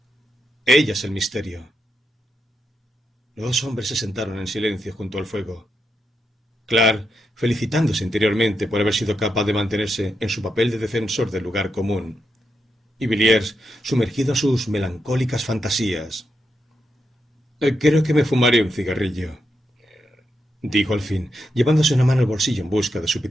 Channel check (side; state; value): both; normal; correlation 0.84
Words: Ella es el misterio. Los 2 hombres se sentaron en silencio junto al fuego. Clark, felicitándose interiormente por haber sido capaz de mantenerse en su papel de defensor del lugar común, y Villiers, sumergido en sus melancólicas fantasías. Creo que me fumaré un cigarrillo. dijo al fin, llevándose una mano al bolsillo en busca de su